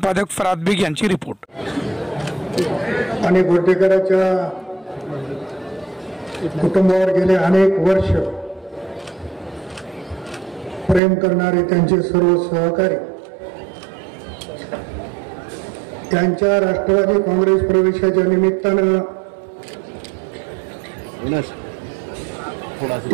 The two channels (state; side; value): drops out; left; at 11.0 s